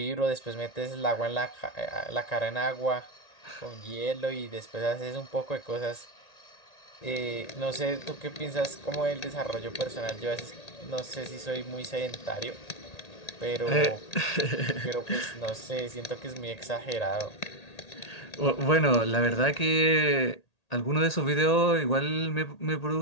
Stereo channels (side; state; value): right; late; 1.8 ms